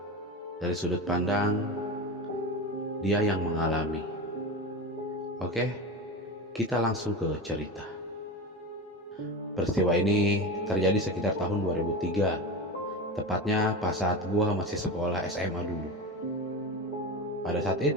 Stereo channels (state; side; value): normal; both; correlation 0.25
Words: dari sudut pandang dia yang mengalami. Oke, kita langsung ke cerita. Peristiwa ini terjadi sekitar tahun 2003, tepatnya pas saat gue masih sekolah SMA dulu. Pada saat